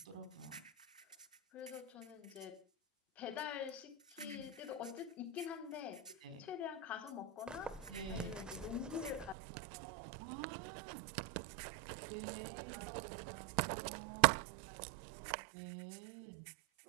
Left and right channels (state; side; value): drops out; left; at 9.3 s